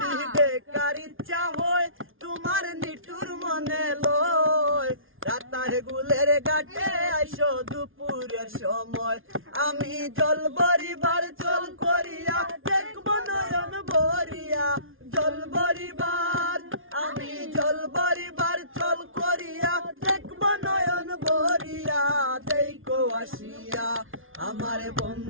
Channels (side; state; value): left; late; 0.59 ms